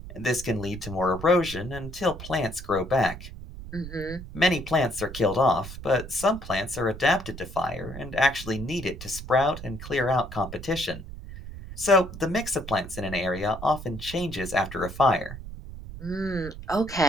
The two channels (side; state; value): right; noise; rumble, 12 dB below the sound